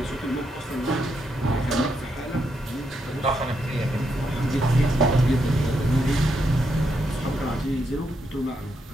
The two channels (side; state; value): both; normal; correlation 0.80